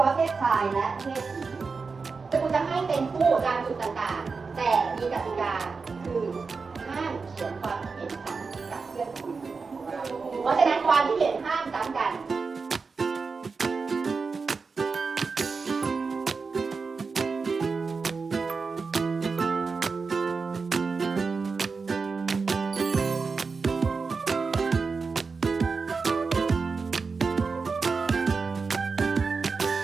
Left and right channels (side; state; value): left; quieter; 4.7 dB